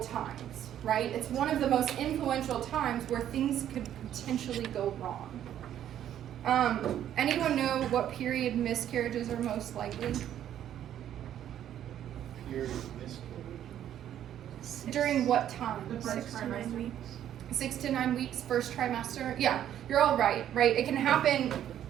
right? It's one of the most influential times where things could potentially go wrong. Anyone know what period miscarriages are most likely? Period miscarriage. During what time? The first trimester. 6 to 9 weeks, first trimester. Yeah, you're all right, right? It can happen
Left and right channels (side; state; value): left; quieter; 10.8 dB